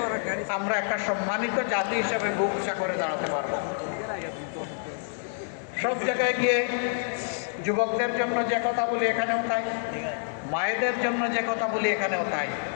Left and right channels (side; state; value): right; silent; digital silence